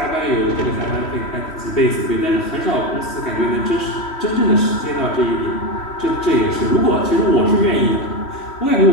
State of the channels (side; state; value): right; late; 3.1 ms